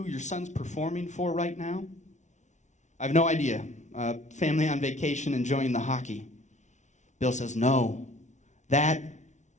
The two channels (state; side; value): late; right; 0.34 ms